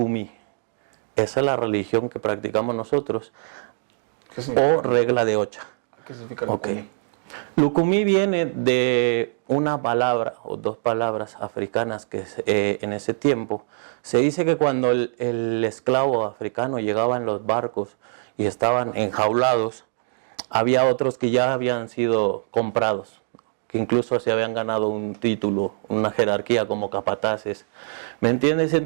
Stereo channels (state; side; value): silent; left; digital silence